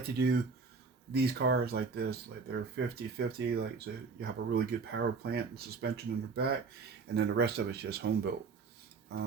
to do these cars like this, like they're 50/50, like so you have a really good power plant and suspension in the back, and then the rest of it's just home built.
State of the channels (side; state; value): left; quieter; 4.7 dB